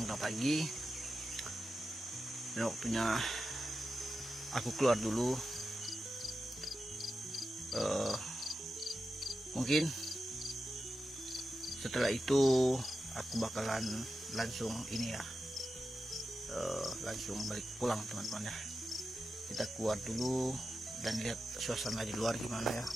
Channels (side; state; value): both; normal; correlation 0.91